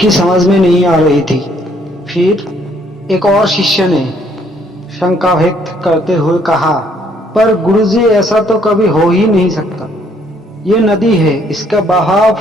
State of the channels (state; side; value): normal; both; correlation 0.66